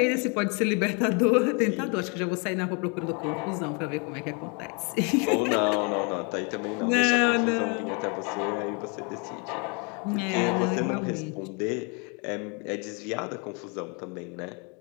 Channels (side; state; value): right; quieter; 34.2 dB